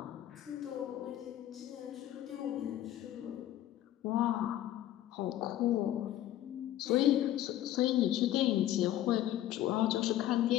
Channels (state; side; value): quieter; right; 12.8 dB